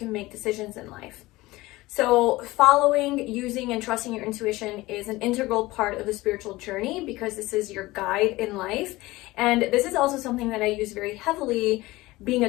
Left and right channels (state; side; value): quieter; right; 19.5 dB